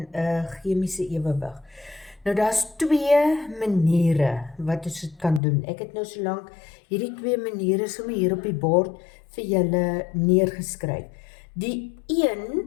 'n chemiese ewewig. Nou daar's twee maniere wat ons dit kan doen. Ek het nou solank hierdie twee maniere sommer hier op die bord vir julle neergeskryf. Die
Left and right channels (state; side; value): drops out; right; at 5.4 s